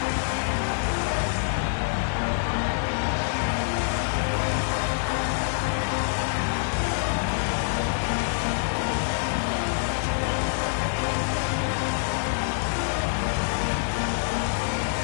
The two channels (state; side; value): silent; right; digital silence